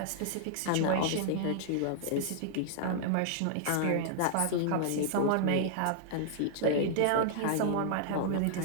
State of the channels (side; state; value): both; different; correlation -0.01